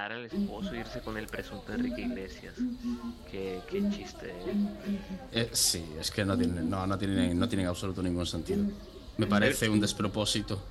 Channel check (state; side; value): identical; both; correlation 1.00